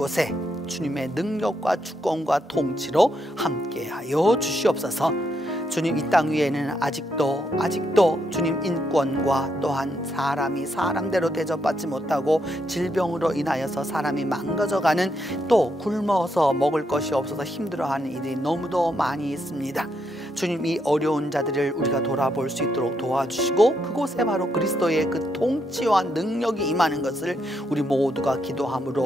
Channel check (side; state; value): both; normal; correlation 0.78